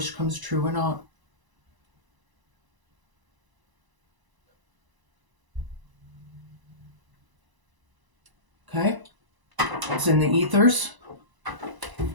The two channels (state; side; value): late; left; 1.0 ms